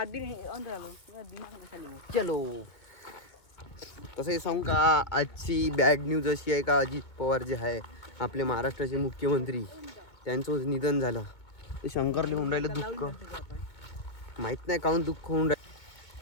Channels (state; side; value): late; right; 2.2 ms